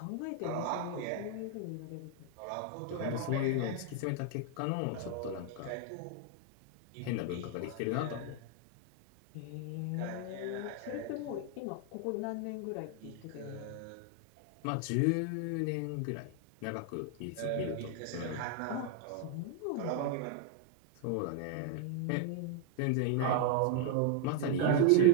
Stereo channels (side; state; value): both; different; correlation 0.00